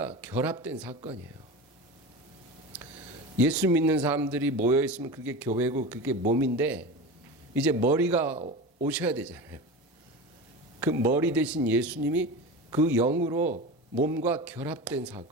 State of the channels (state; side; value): normal; both; correlation 0.28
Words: 결합된 사건이에요. 예수 믿는 사람들이 모여 있으면 그게 교회고 그게 몸인데, 이제 머리가 오셔야 되잖아요. 그 머리 대신 예수님이 그 영으로 몸과 결합된